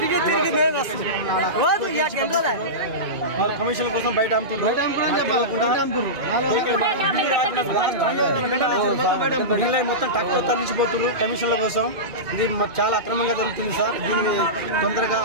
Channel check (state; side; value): late; left; 2.4 ms